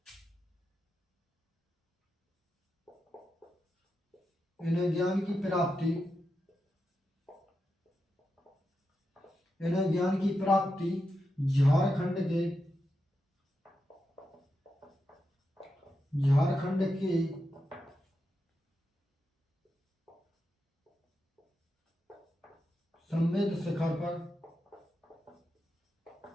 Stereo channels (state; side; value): normal; both; correlation 0.87